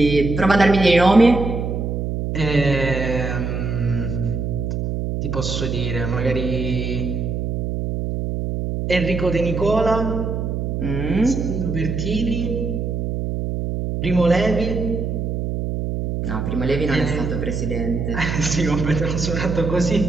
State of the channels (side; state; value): right; noise; hum, 2 dB below the sound